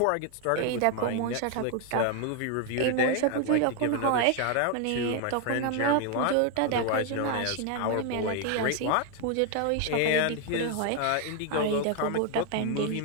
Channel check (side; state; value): both; different; correlation 0.01